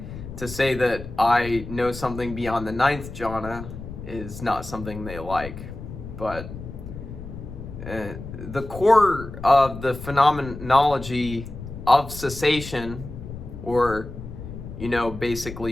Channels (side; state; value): left; noise; rumble, 11 dB below the sound